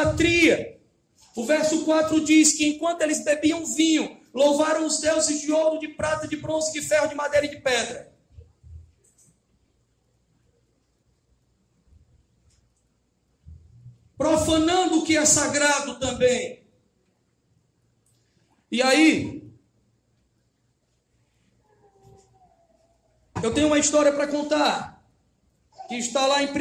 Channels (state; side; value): identical; both; correlation 1.00